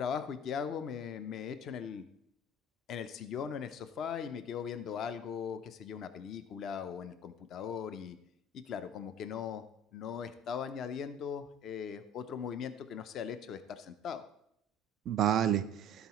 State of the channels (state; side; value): normal; both; correlation 0.44